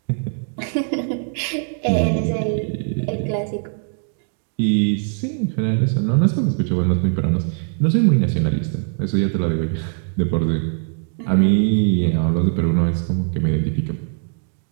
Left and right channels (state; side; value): silent; left; 65 dB below the other